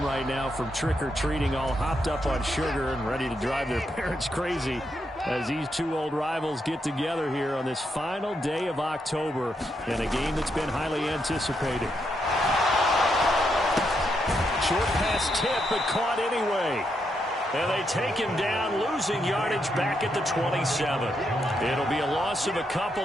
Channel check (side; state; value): both; normal; correlation 0.80